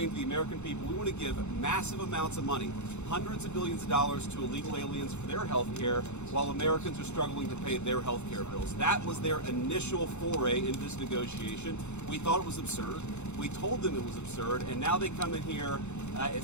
to the American people, we want to give massive amounts of money, hundreds of billions of dollars to illegal aliens for their health care, while Americans are struggling to pay their health care bills. That was their initial foray into this negotiation. We thought it was absurd. We told them it was absurd, and now they come in here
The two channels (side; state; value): right; late; 0.82 ms